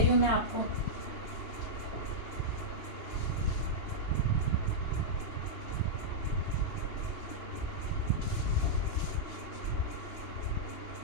हूँ मैं आपको।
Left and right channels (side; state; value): right; late; 2.8 ms